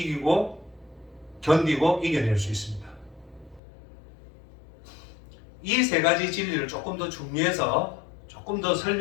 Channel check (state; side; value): drops out; right; at 3.6 s